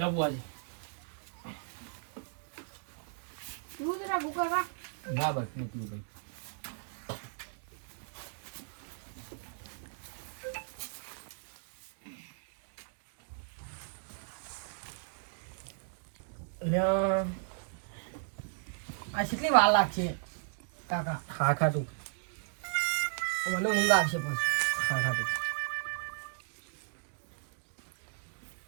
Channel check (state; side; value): silent; left; digital silence